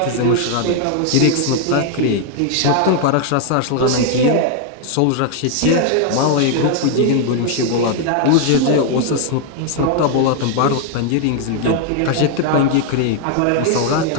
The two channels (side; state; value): both; different; correlation 0.00